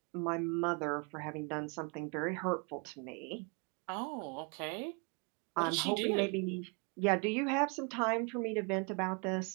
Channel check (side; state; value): left; quieter; 34.3 dB